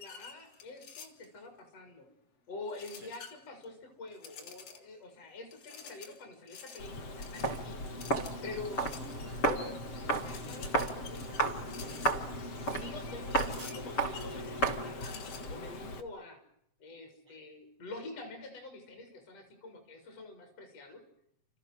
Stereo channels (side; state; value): right; late; 7.6 ms